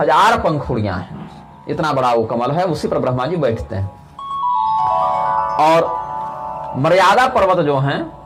पंखुड़ियां हैं। इतना बड़ा वो कमल है, उसी पर ब्रह्मा जी बैठते हैं। और मर्यादा पर्वत जो हैं,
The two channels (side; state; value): both; identical; correlation 1.00